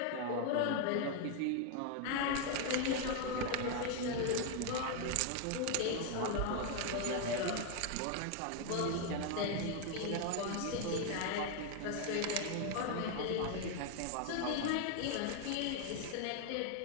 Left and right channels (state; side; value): different; both; correlation 0.01